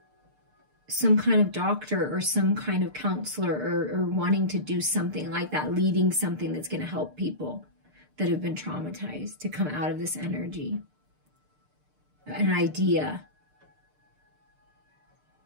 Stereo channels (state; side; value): late; left; 6.7 ms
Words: some kind of doctor or some kind of counselor or wanting to do something like that, leading something that's going to help people that have been traumatized to come out of this energy. An idea.